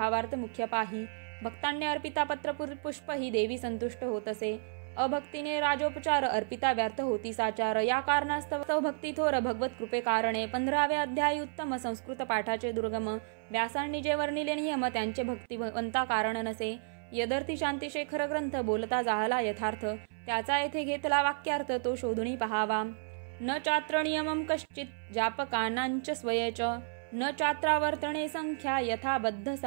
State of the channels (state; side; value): silent; left; 56 dB below the other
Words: मुख्य पाही. भक्तांनी अर्पिता पत्र पुष्प ही देवी संतुष्ट होत असे. अभक्तीने राजोपचार अर्पिता व्यर्थ होती साचार, या कारणास्तव भक्ती थोर भगवत कृपे कारणे. 15वे अध्यायी उत्तम संस्कृत पाठाचे दुर्गम, व्यासांनी जे वर्णिले नियम त्यांचे भक्तिवंता कारण नसे. यदर्थी शांतिशेखर ग्रंथ बोलता जाहला यथार्थ, त्याचा येथे घेतला वाक्यार्थ तो शोधुनी पहावा. न चात्र नियमं कश्चित जापकानांच स्वयेच, न चात्रावर्तने संख्या यथाबद्ध